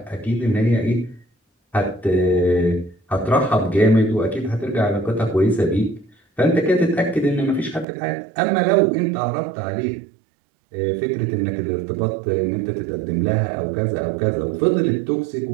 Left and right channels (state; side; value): drops out; left; at 7.9 s